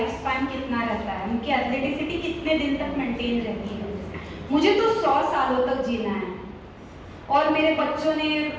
स्पैन कितना रहता है, उनकी एथलेटिसिटी कितने दिन तक मेंटेन रहती है? मुझे तो 100 सालों तक जीना है और मेरे बच्चों ने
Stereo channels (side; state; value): both; identical; correlation 1.00